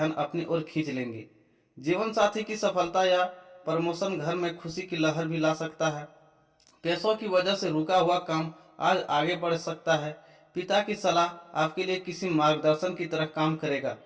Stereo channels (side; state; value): both; identical; correlation 1.00